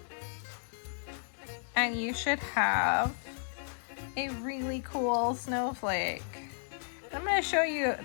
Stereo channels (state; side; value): silent; right; digital silence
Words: And you should have a really cool snowflake. I'm going to show you